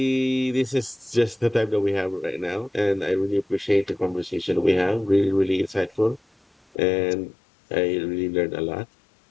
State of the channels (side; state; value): right; drops out; at 6.8 s